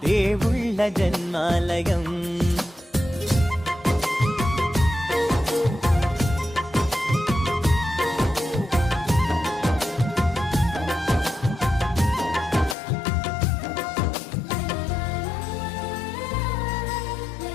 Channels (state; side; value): drops out; right; at 12.8 s